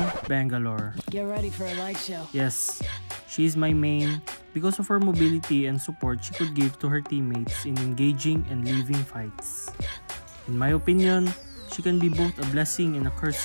Bangalore. Get ready for a light show. Yes, she is my main because of her mobility and support she could give to her teammates in engaging and leaving fights. In my opinion, she can be both a blessing and a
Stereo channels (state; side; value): inverted; both; correlation -1.00